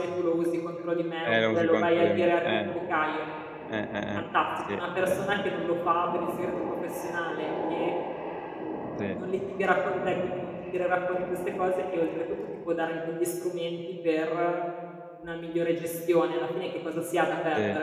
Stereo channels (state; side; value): identical; both; correlation 1.00